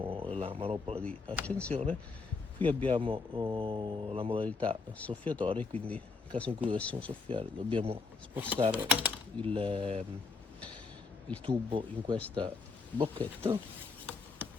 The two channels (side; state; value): right; quieter; 4.3 dB